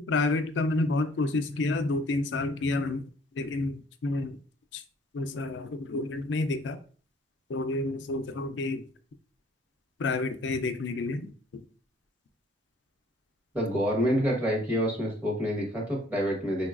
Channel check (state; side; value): normal; both; correlation 0.57